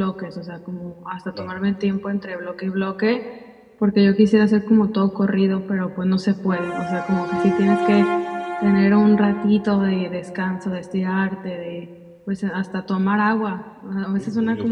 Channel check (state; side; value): identical; both; correlation 1.00